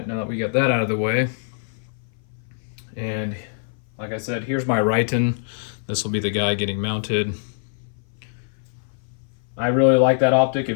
now that we got that out of the way, and like I said, here's my Riton. This will be the guy getting mounted. I really like that optic.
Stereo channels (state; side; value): silent; right; 58 dB below the other